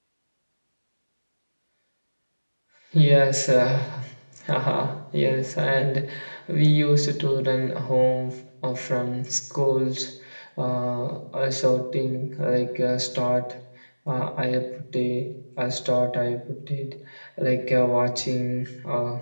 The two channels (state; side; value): inverted; both; correlation -1.00